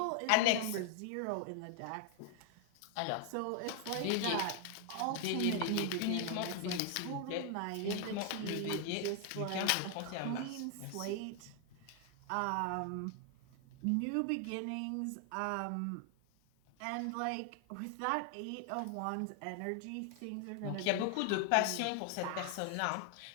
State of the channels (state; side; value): different; both; correlation 0.00